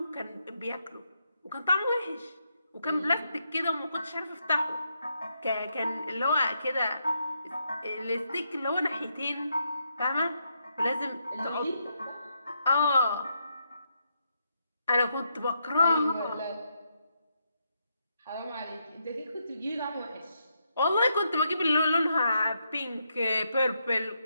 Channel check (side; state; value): both; inverted; correlation -0.80